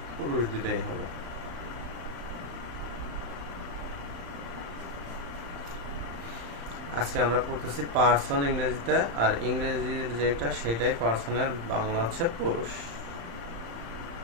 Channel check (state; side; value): late; left; 35 ms